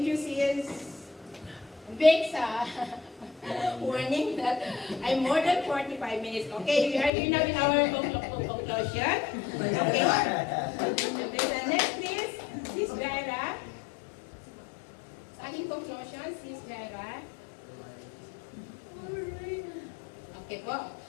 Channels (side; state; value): right; drops out; at 7.1 s